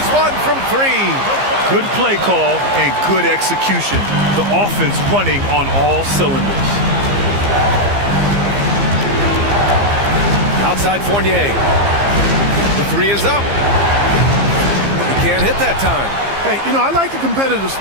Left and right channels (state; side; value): late; left; 15 ms